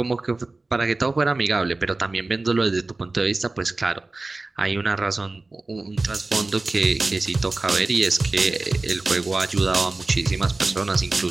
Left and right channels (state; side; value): quieter; left; 3.2 dB